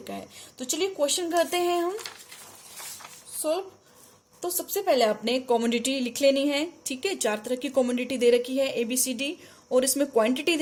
का है। तो चलिए क्वेश्चन करते हैं हम सॉल्व। तो सबसे पहले आपने कमोडिटी लिख लेनी है। ठीक है, 4 तरह की कमोडिटी दे रखी है ABCD, और इसमें क्वांटिटी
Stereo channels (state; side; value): identical; both; correlation 1.00